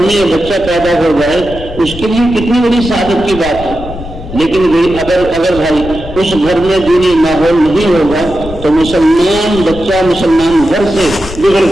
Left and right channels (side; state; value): left; noise; rumble, 12 dB below the sound